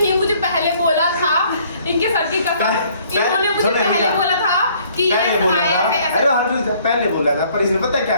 मुझे पहले बोला था, इनके सर की कसम, इन्होंने मुझे पहले बोला था कि पहले बोला था, पर इसने पता क्या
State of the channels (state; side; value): inverted; both; correlation -0.61